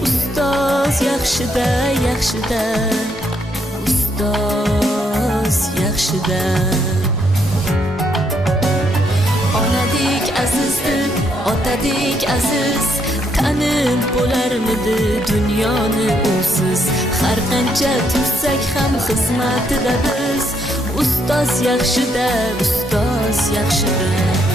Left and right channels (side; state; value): both; normal; correlation 0.74